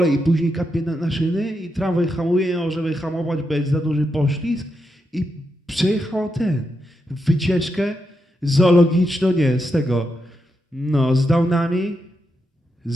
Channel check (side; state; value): both; normal; correlation 0.84